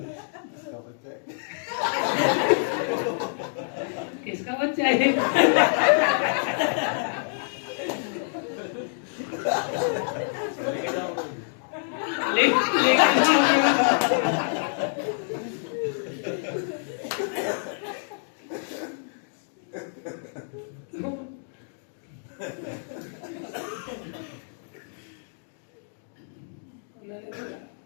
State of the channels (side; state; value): right; silent; digital silence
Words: किसका बच्चा है?